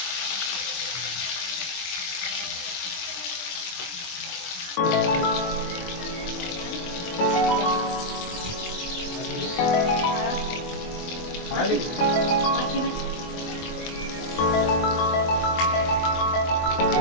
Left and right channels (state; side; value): late; right; 23 ms